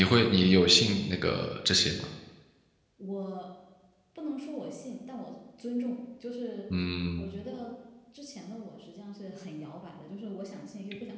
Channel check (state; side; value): identical; both; correlation 1.00